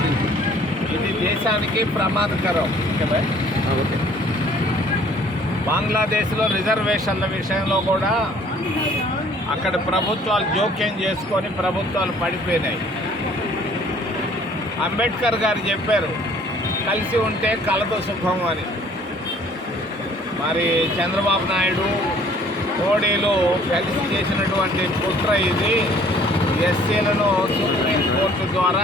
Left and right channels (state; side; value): normal; both; correlation 0.56